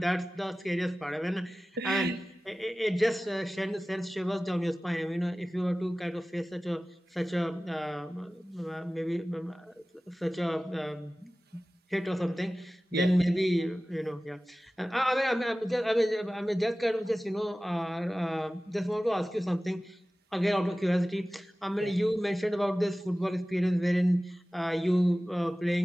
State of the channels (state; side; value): normal; both; correlation 0.97